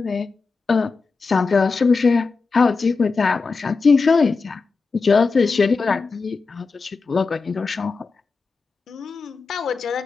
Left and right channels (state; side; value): quieter; right; 4.4 dB